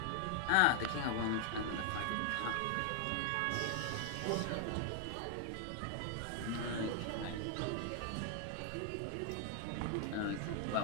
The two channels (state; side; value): different; both; correlation 0.00